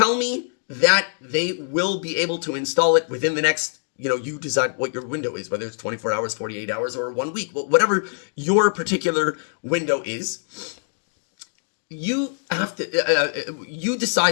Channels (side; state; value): right; silent; digital silence